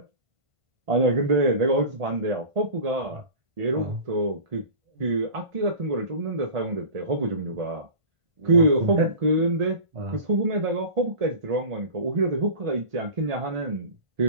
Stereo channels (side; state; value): left; late; 1.5 ms